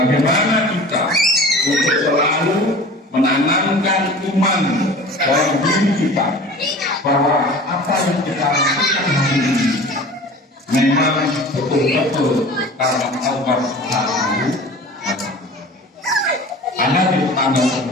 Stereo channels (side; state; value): both; normal; correlation 0.40